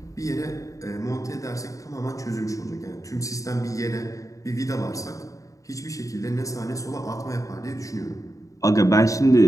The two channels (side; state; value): right; late; 0.16 ms